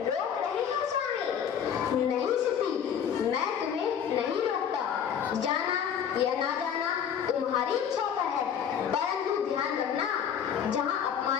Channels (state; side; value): quieter; right; 8.2 dB